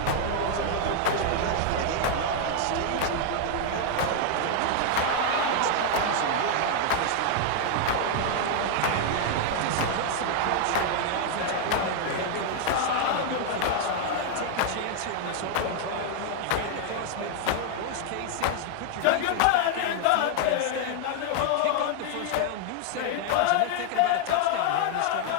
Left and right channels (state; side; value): different; both; correlation 0.00